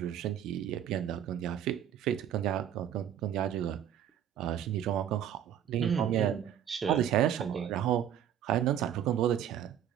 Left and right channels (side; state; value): left; quieter; 10.1 dB